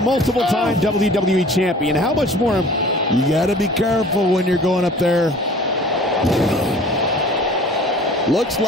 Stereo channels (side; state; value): both; normal; correlation 0.47